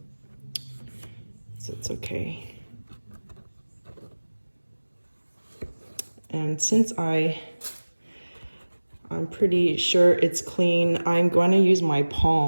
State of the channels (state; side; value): inverted; both; correlation -1.00